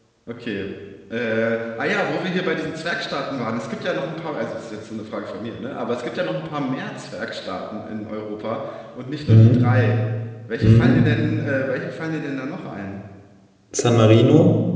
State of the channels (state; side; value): identical; both; correlation 1.00